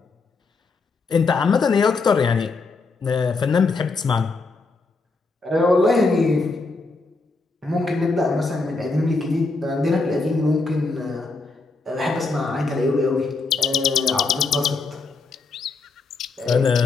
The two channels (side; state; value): right; quieter; 3.9 dB